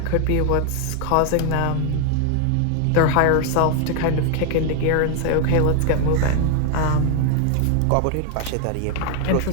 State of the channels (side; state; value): both; different; correlation 0.00